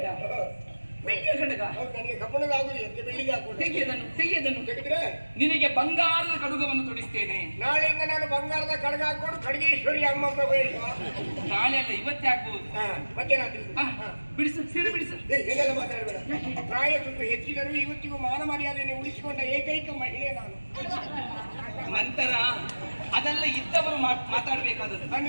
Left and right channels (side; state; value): both; inverted; correlation -1.00